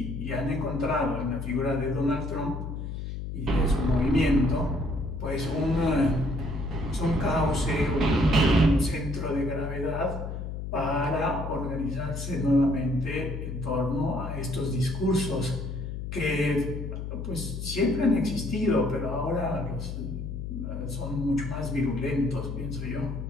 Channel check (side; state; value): left; noise; hum, 6 dB below the sound